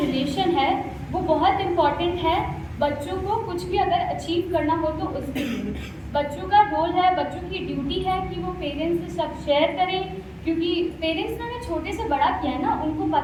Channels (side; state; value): both; identical; correlation 1.00